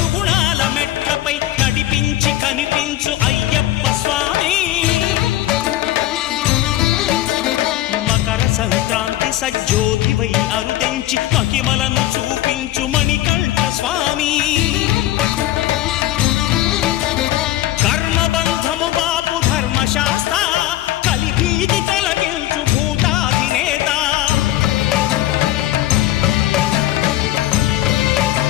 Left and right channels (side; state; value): right; quieter; 14.4 dB